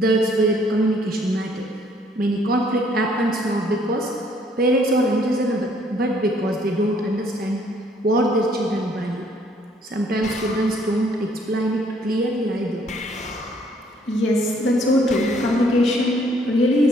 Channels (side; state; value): both; normal; correlation 0.64